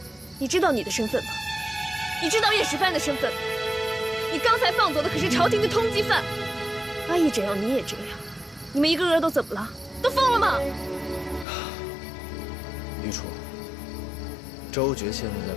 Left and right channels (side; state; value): right; drops out; at 11.5 s